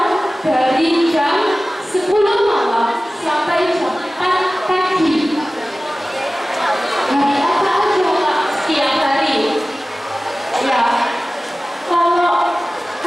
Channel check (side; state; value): both; normal; correlation 0.97